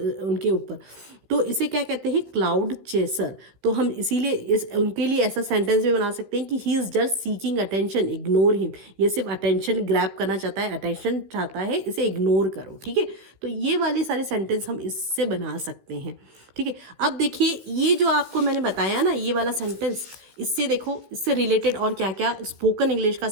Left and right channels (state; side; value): late; left; 15 ms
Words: उनके ऊपर। तो इसे क्या कहते हैं? Cloud chaser. तो हम इसीलिए उनके लिए ऐसा सेंटेंस भी बना सकते हैं कि he is just seeking attention, ignore him. ये सिर्फ अटेंशन ग्रैब करना चाहता है, अटेंशन चाहता है, इसे इग्नोर करो, ठीक है। तो ये वाले सारे सेंटेंस हम इससे बना सकते हैं, ठीक है। अब देखिए ये जो आपको मैंने बताया ना, ये वाला सेंटेंस, इससे देखो इससे रिलेटेड और क्या क्या स्पोकन इंग्लिश का